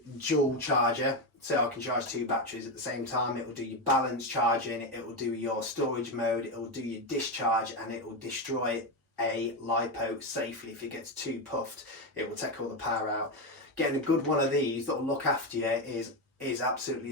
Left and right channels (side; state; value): both; normal; correlation 0.11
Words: dual charger. So I can charge 2 batteries at the same time. It will do your balance charging, it will do your storage mode, it will do your discharge, and it will destroy a LiPo safely. If it gets too puffed, it will take all the power out. Getting a good one of these that will look after you is